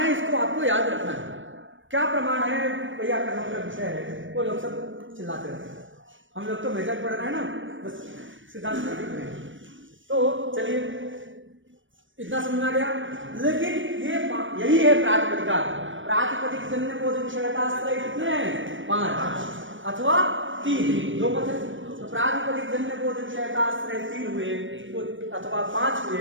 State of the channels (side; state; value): left; late; 0.56 ms